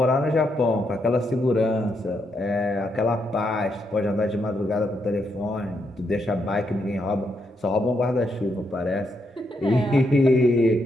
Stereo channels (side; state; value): both; normal; correlation 0.79